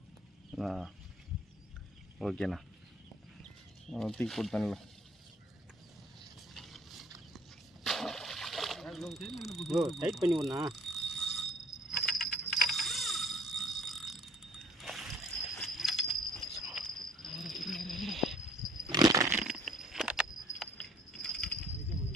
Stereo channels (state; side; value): normal; both; correlation 0.57